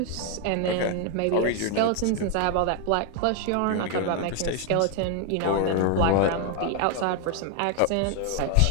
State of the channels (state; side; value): different; both; correlation 0.01